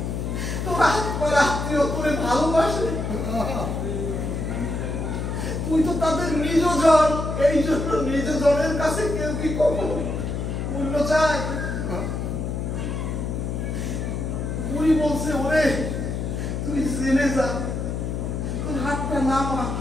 তুই তো তাদের নিজ জন, এই জন্য নিজ জনের কাছে কেউ কি কখনো মূল্য চায়? বুড়ি বলছে, ওরে তুই জেনে যা, তোর হাতটা নামা।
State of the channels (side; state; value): left; noise; hum, 3 dB below the sound